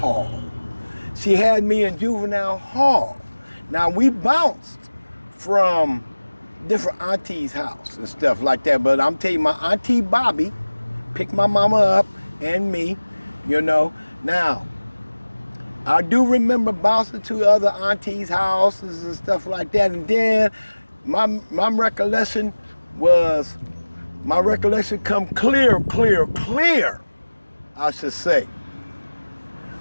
She had me in juvenile hall. Now, we bounced from different aunties' house and stuff like that, but I'm telling you, my auntie Bobby picked my mama up and me, you know. Now, I do remember bouncing to other aunties' houses and stuff like that. And then my recollection come clear, I should say,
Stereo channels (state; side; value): inverted; both; correlation -1.00